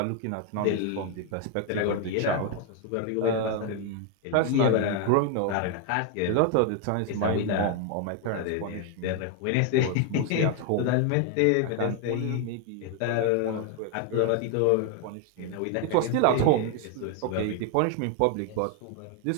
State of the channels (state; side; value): different; both; correlation 0.00